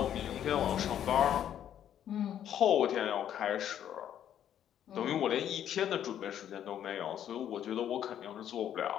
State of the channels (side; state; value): right; quieter; 10.2 dB